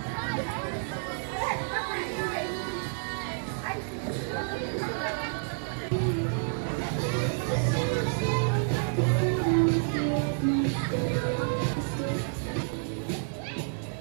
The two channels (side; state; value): left; silent; digital silence